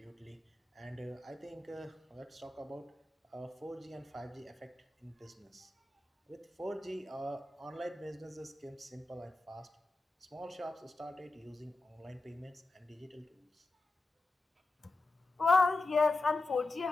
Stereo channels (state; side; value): quieter; right; 3.1 dB